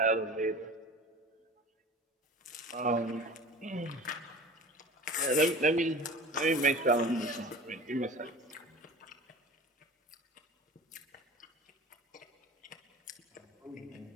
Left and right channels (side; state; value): both; normal; correlation 0.38